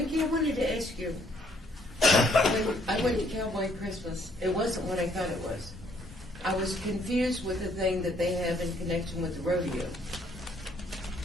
I wanted to ask you, when I went to Cowboy Christmas, it wasn't what I thought it was. I was confused with the thing that they have in connection with the rodeo.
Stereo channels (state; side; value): normal; both; correlation 0.66